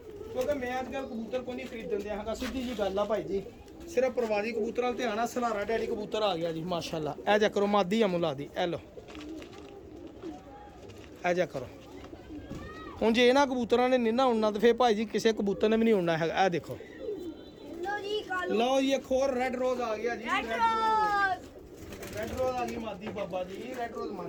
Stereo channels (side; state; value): both; identical; correlation 1.00